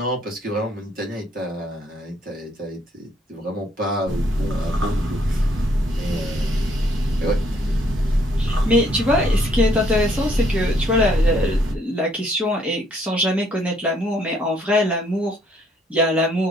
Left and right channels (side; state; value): both; normal; correlation 0.67